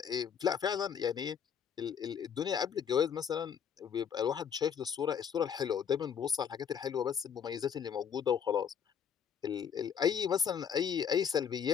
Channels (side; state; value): right; quieter; 7.8 dB